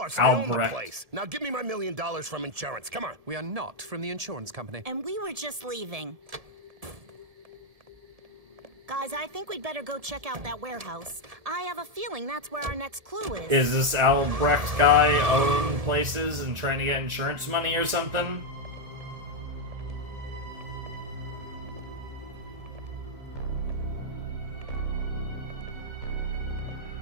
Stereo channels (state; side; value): late; left; 1.7 ms